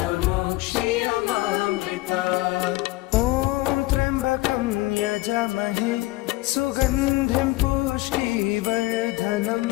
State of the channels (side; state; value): right; quieter; 20.2 dB